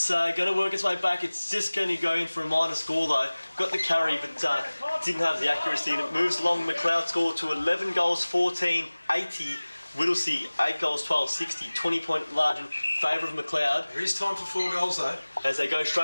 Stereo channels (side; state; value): both; inverted; correlation -1.00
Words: going to work its way back. It's just going to go in for a minor score though. Got the carry, but didn't have the accuracy, and it moves along. Macleod score to 11 goals 14, 80. Whittlesea, 8 goals 12, 60, 20-point margin, favour of Macleod. There is time for 4 goals though. As they go